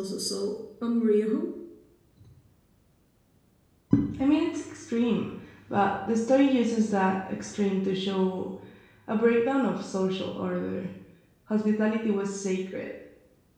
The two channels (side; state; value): both; identical; correlation 1.00